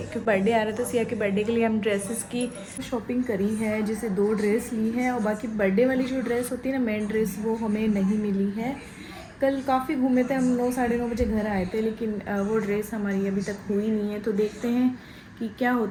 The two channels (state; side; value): identical; both; correlation 1.00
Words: बर्थडे आ रहा था सिया के। बर्थडे के लिए हम ड्रेसेस की शॉपिंग करी है, जैसे 2 ड्रेस ली है, और बाकी बर्थडे वाली जो ड्रेस होती है ना, मेन ड्रेस, वो हमें नहीं मिली है। कल काफ़ी घूमे थे हम, 9 साढ़े 9 बजे घर आए थे, लेकिन वो ड्रेस हमारी अभी तक हुई नहीं है। तो देखते हैं कि क्या